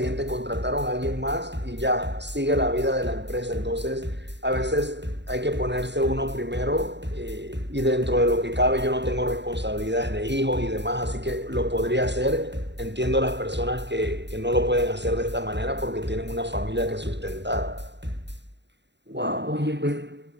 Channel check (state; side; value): late; left; 0.51 ms